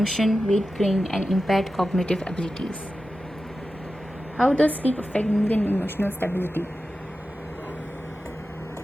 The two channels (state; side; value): normal; both; correlation 0.93